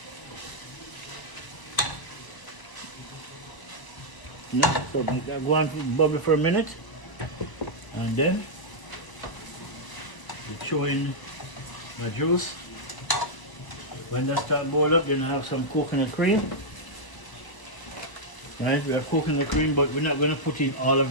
Yeah, so make that go on bubble for a minute, and then you throw in the juice. When that starts boil up, then I have some coconut cream. Right, we are coconut cream, but we're not going to put in all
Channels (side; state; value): right; late; 1.0 ms